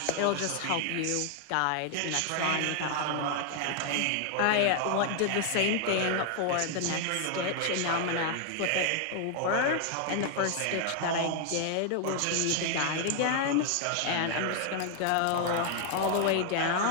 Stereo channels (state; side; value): different; both; correlation 0.00